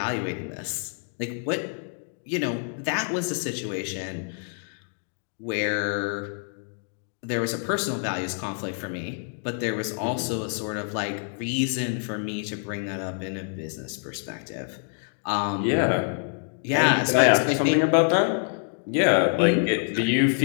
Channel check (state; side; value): silent; right; 59 dB below the other